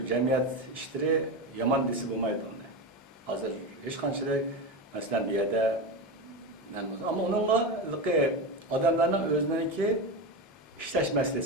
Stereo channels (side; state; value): both; normal; correlation 0.19